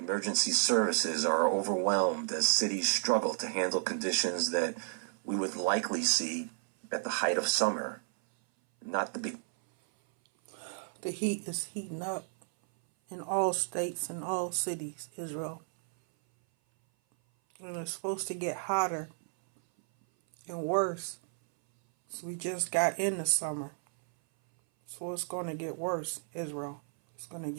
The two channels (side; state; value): left; silent; 56 dB below the other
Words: services are overwhelmed as cities struggle to handle conditions that we would likely see at the height of summer, not the big. The heat is heating up in all states and all cities, Israel. And it's supposed to get hotter and worse. So we just got into summer. So it's going to get worse, Israel. It's going to